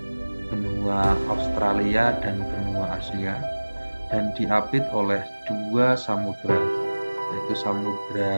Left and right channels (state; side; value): inverted; both; correlation -1.00